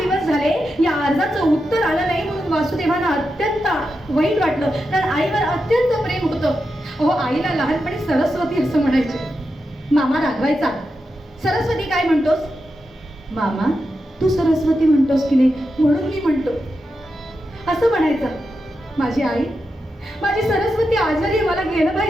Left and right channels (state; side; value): normal; both; correlation 0.88